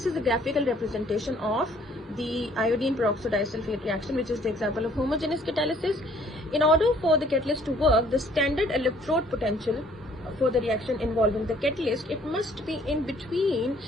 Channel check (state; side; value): normal; both; correlation 0.60